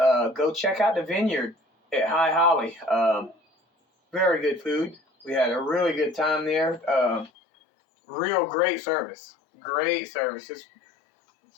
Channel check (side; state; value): right; drops out; at 7.3 s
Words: check out the vineyard at High Holly. Very good food. We had a really good time there. Real great service. Great service. It's